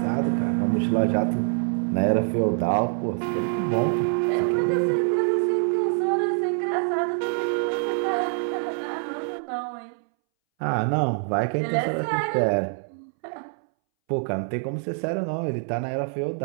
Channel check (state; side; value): silent; left; 62 dB below the other